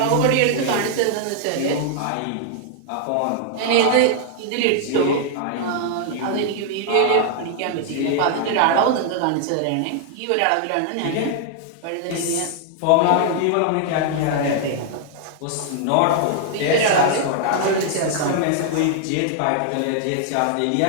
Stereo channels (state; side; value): different; both; correlation 0.00